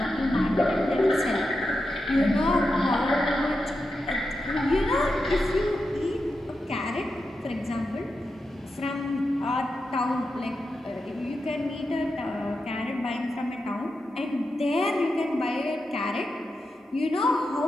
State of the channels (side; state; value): both; normal; correlation 0.88